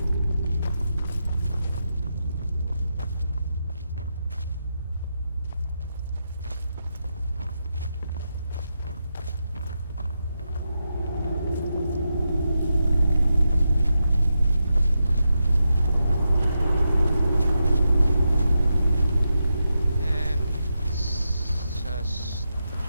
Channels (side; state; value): both; inverted; correlation -0.87